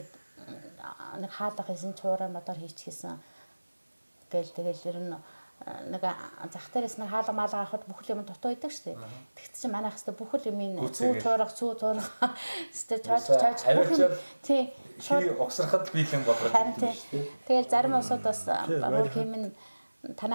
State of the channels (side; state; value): both; inverted; correlation -1.00